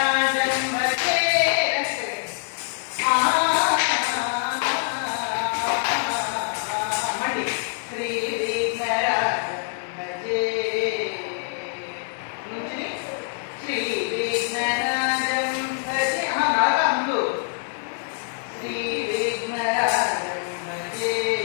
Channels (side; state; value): right; silent; digital silence